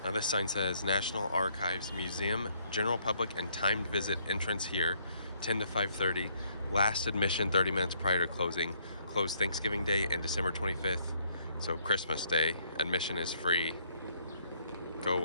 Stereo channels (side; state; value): both; inverted; correlation -0.68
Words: Now this sign says National Archives Museum, general public and timed visit entrance here, 10 to 5:30. Last admission 30 minutes prior to closing. Closed Thanksgiving Day and December 25th. So Christmas Day. Admission is free. Go